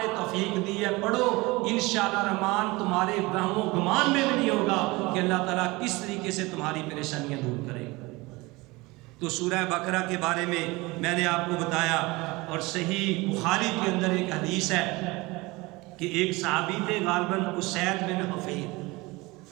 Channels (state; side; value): quieter; left; 22.8 dB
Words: توفیق دی ہے پڑھو، انشاءاللہ رحمان تمہارے وہم و گمان میں بھی نہیں ہوگا کہ اللہ تعالیٰ کس طریقے سے تمہاری پریشانیاں دور کرے گا۔ تو سورہ بقرہ کے بارے میں نے آپ کو بتایا، اور صحیح بخاری کے اندر ایک حدیث ہے کہ ایک صحابی تھے غالباً اسید بن